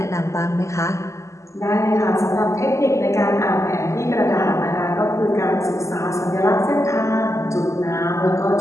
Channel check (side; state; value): right; late; 0.14 ms